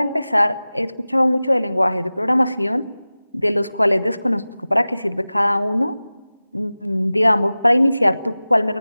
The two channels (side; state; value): both; inverted; correlation -0.97